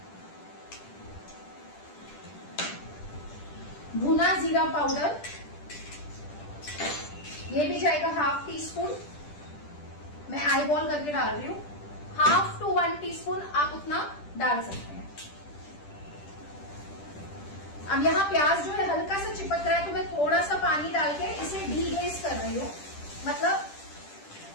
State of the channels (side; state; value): right; late; 10 ms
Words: भुना जीरा पाउडर, ये भी जाएगा 1/2 टीस्पून। मैं आई बॉल करके डाल रही हूँ, 1/2 to 1 टीस्पून आप उतना डाल सकते हैं। अब यहाँ प्याज जो है हल्का सा चिपक रहा है, तो मैं थोड़ा सा पानी डाल के इसे डीग्लेज कर रही हूँ। मतलब